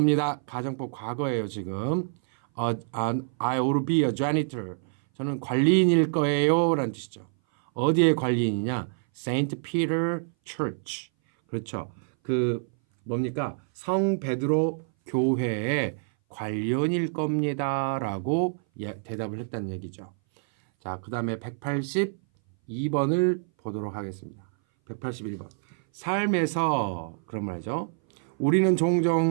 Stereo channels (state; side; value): silent; left; 59 dB below the other